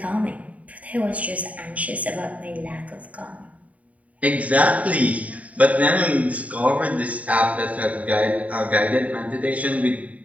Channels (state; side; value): late; left; 0.069 ms